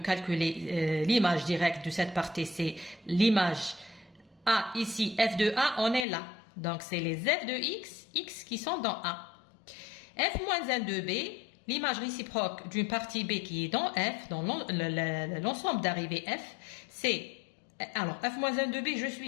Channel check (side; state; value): right; drops out; at 6.1 s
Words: l'image directe de cette partie, c'est l'image A ici, F de A, on est là. Donc, c'est les F de X, X qui sont dans A. F-1 de B, l'image réciproque d'une partie B qui est dans F, dans l'ensemble d'arrivée F, c'est, alors, F-1 de B, je